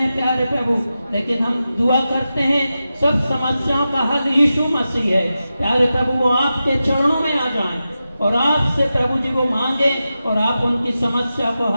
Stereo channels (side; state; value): both; inverted; correlation -0.92